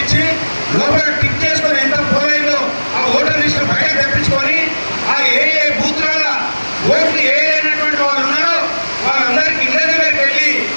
లోపల టిక్ చేసుకొని ఎంత పోల్ అయిందో ఆ ఓటర్ లిస్ట్ బయట తెప్పించుకొని ఆ ఏ బూత్ల ఓట్లు అయినటువంటి వాళ్ళు ఉన్నారో వాళ్ళందరికీ ఇళ్ళ దగ్గరికి వెళ్ళి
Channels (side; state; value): both; inverted; correlation -1.00